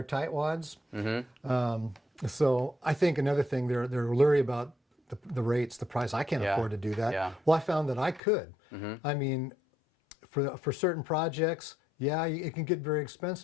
tightwads. So I think another thing, they're leery about the rates, the price. I can't afford to do that. Yeah. Well, I found that I could. I mean, for certain projects, it can get very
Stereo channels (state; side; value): drops out; right; at 8.2 s